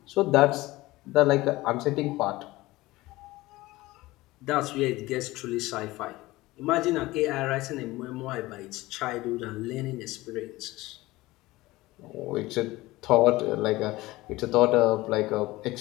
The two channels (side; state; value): right; quieter; 19.2 dB